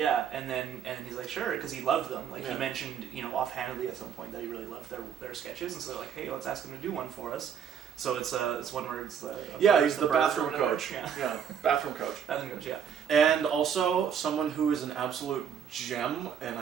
and then he's like, sure, because he loved them. Like, Yeah. he mentioned, offhandedly at some point that he really loved their sketches, and so they're like, hey, let's ask him to do one for us. So it's one where it's he's the bird bathroom or whatever. coach. Yeah, Bathroom coach. bathroom coach. Yeah. And also, someone who is an absolute gem, and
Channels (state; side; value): quieter; left; 7.9 dB